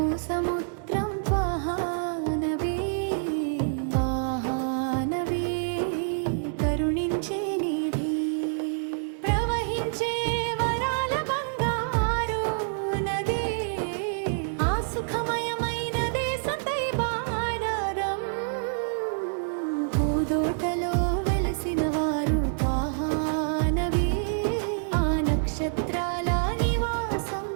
సముద్రం త్వాహా నబీ కరుణించే నిధి ప్రవహించే వరాల బంగారు నది ఆ సుఖమయమైన దేశం తైబారం పూదోటలో వెలసిన వారు త్వాహా నబీ ఆ నక్షత్రాల నివాసం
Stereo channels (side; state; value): left; silent; digital silence